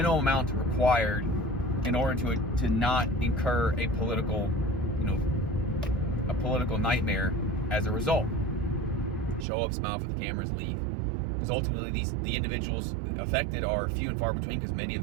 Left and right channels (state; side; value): drops out; left; at 9.5 s